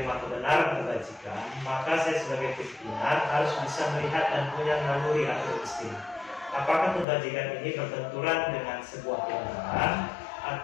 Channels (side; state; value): right; drops out; at 7.1 s